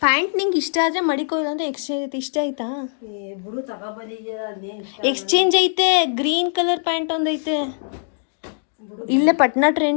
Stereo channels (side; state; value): right; silent; digital silence